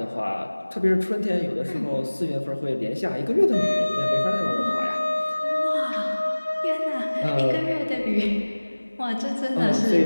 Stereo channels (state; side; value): inverted; both; correlation -1.00